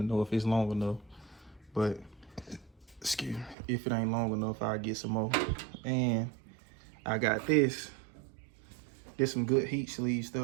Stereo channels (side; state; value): left; drops out; at 3.6 s